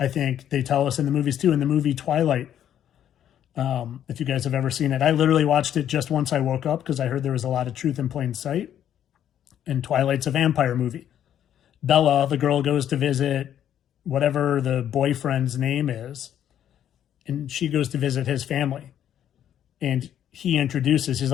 think they tell us in the movies too, in the movie Twilight, if you guys have ever seen it. I literally watched it just once I woke up because I heard there was a lot of truth in plain sight. And Twilight's a vampire movie. Bella, the girl, goes to visit whatever the boyfriend's name is, and she goes to visit his family. And he introduces, he's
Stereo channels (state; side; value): quieter; right; 10.3 dB